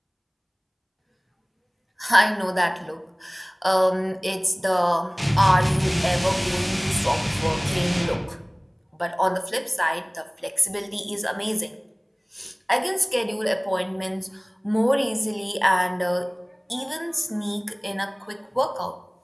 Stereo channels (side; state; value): both; identical; correlation 1.00